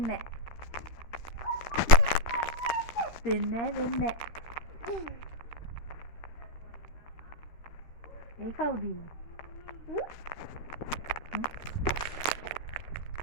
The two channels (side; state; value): right; late; 13 ms